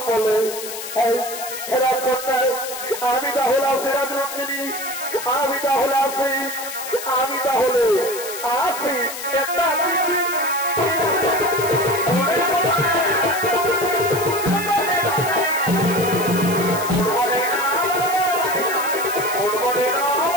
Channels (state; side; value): noise; left; hiss, 9 dB below the sound